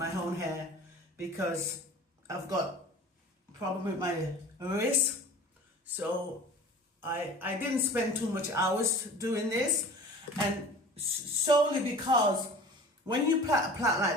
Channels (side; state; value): both; normal; correlation 0.41